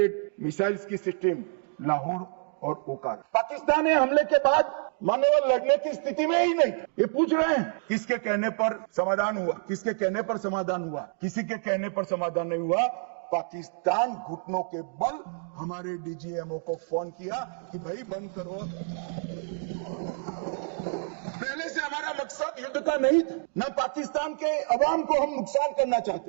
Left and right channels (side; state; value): left; silent; 58 dB below the other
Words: missiles की सिस्टम लाहौर और ओकार। पाकिस्तान ने हमले के बाद मान्यवर लड़ने की स्थिति में ही नहीं। ये पूछ रहे हैं किसके कहने पर समाधान हुआ, किसके कहने पर समाधान हुआ, किसी के कहने पर समाधान नहीं हुआ। पाकिस्तान घुटनों के बल हमारे डीजीएमओ को फोन किया कि भाई बंद करो। पहले से हमारा मकसद युद्ध का नहीं था, न पाकिस्तान के अवाम को हम नुकसान करना